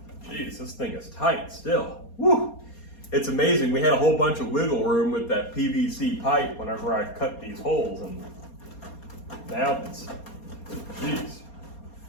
Jeez, this thing is tight still. Woo! It's amazing. We had a whole bunch of wiggle room with that PVC pipe whenever I cut these holes, and now it's, jeez.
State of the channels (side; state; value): right; late; 4.3 ms